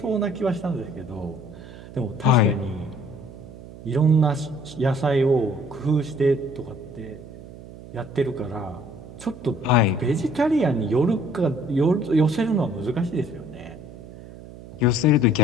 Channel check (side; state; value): right; noise; hum, 16 dB below the sound